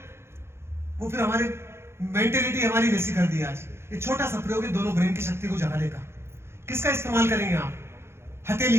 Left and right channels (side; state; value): left; late; 0.12 ms